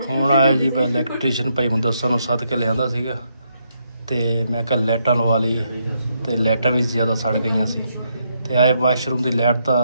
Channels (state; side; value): inverted; both; correlation -0.77